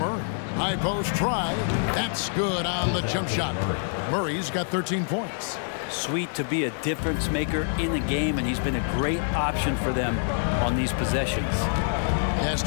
High post try. That's good on the jump shot. Murray's got 13 points. Sweet to be a difference maker in the game, and he's been a great option for them on these possessions. Pass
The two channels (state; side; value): silent; right; digital silence